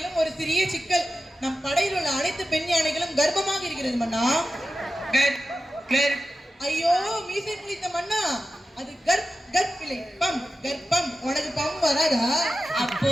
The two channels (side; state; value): both; normal; correlation 0.92